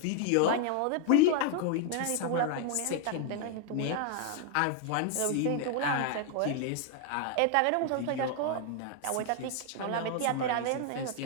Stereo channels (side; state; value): both; different; correlation 0.00